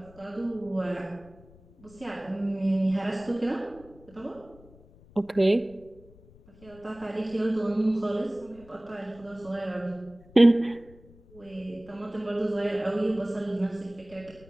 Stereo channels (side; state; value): left; noise; rumble, 24 dB below the sound